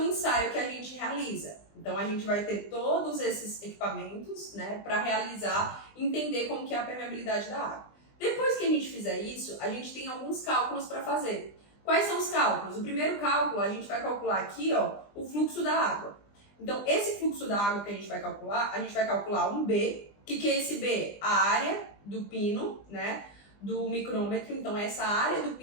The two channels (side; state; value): right; late; 20 ms